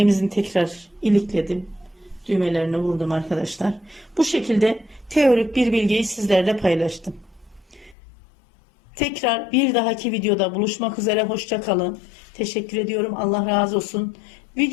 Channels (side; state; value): right; drops out; at 8.0 s